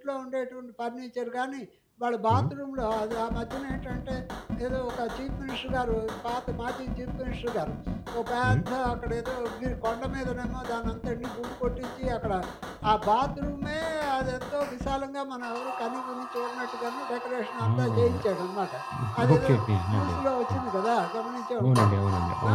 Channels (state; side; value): identical; both; correlation 1.00